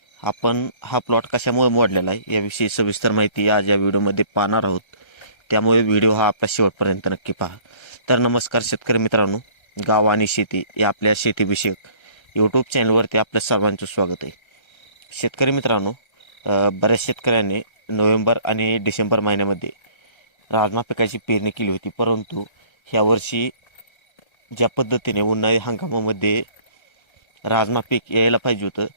आपण हा प्लॉट कशामुळे मोडलेला आहे याविषयी सविस्तर माहिती आज या व्हिडिओमध्ये पाहणार आहोत. त्यामुळे व्हिडिओ हा आपल्या शेवटपर्यंत नक्की पहा. तर नमस्कार शेतकरी मित्रांनो, गाव आणि शेती या आपल्या शेतीविषयक यूट्यूब चॅनलवरती आपल्या सर्वांचं स्वागत आहे. शेतकरी मित्रांनो, बऱ्याच शेतकऱ्यांनी नोव्हेंबर आणि डिसेंबर महिन्यामध्ये राजमा पिकाची पेरणी केली होती, परंतु ह्यावर्षी ज्या पद्धतीने उन्हाळी हंगामामध्ये राजमा पीक यायला पाहिजे होतं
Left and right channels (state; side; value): late; right; 1.3 ms